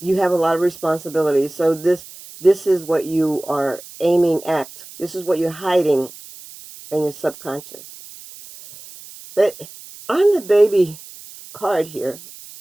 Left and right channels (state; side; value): noise; right; hiss, 18 dB below the sound